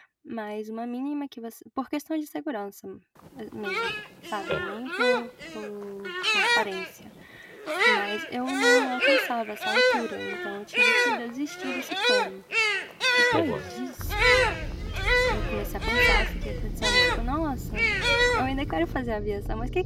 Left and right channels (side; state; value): both; identical; correlation 1.00